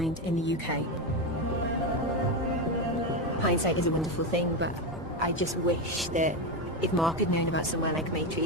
in the UK. Hindsight is a wonderful thing, but I just wish that if Mark had known about somewhere like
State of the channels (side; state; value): both; normal; correlation 0.12